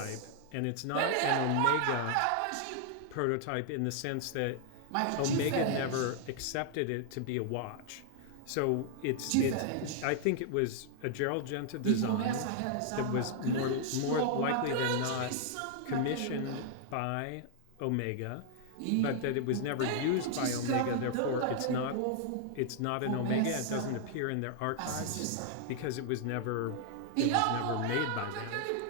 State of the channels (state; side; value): different; both; correlation 0.00